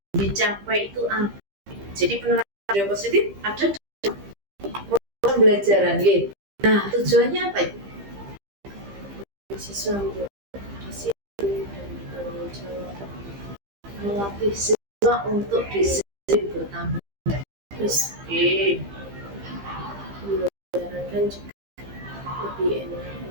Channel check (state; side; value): late; left; 15 ms